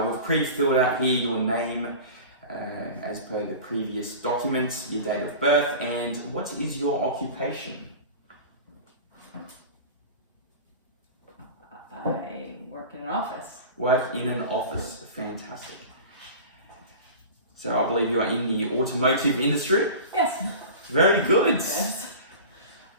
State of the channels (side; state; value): both; inverted; correlation -0.35